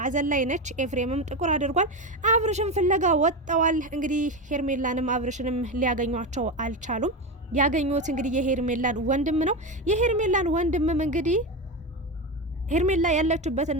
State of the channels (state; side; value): normal; both; correlation 0.17